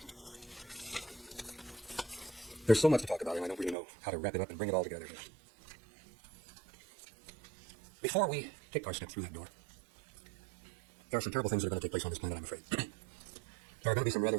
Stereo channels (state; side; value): drops out; left; at 3.8 s